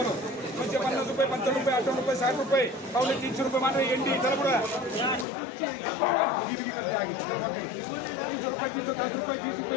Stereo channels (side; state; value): right; drops out; at 5.2 s